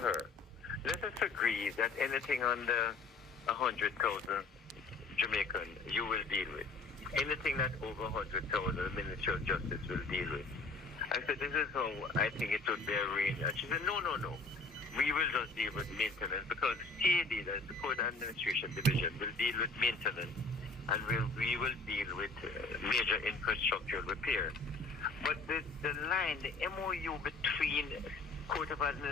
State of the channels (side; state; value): right; quieter; 3.7 dB